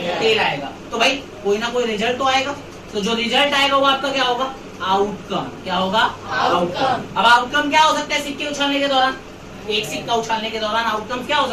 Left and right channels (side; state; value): both; identical; correlation 1.00